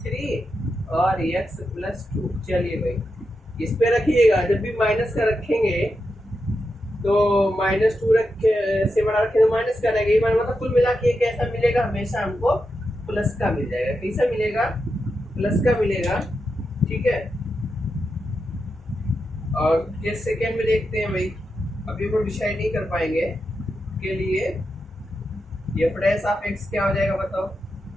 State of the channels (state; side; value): normal; both; correlation 0.87